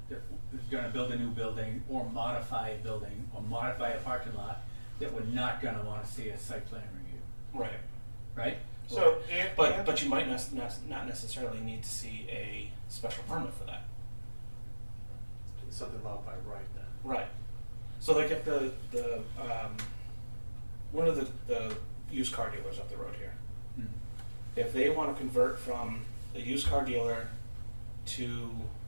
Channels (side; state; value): both; inverted; correlation -1.00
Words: is gonna build a new building or modify a building or modify a parking lot that we're not gonna wanna see a site plan review, Right. right? So, But you might not necessarily need to see a special permit for that. It's something allowed by right then. Right. So like if the one of the used car dealers up the road here, Mm. if they want to convert from a used car dealer to